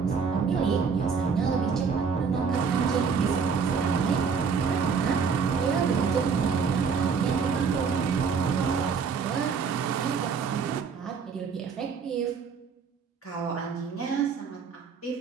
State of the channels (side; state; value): left; quieter; 5.8 dB